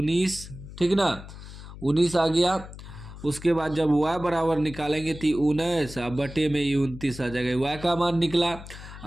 ठीक ना, 19 आ गया। उसके बाद जब y बराबर निकालेंगे तो 19 बटे में ये 29 आ जाएगा, y का मान निकला।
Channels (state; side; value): noise; left; hum, 14 dB below the sound